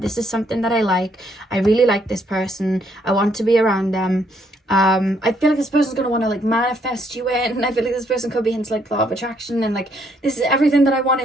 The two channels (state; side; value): normal; both; correlation 0.70